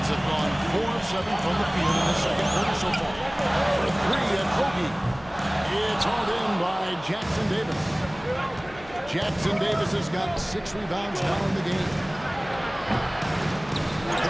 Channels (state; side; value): noise; left; hum, 20 dB below the sound